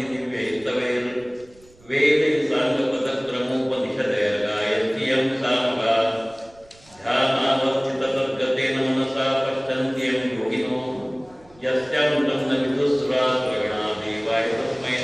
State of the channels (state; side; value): noise; right; rumble, 28 dB below the sound